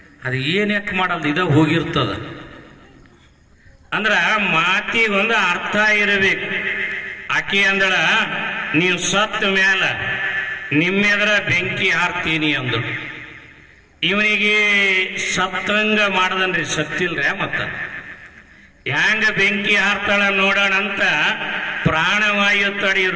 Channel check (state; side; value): identical; both; correlation 1.00